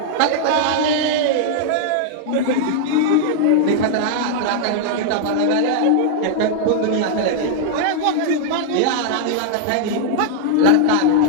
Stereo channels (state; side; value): different; both; correlation -0.01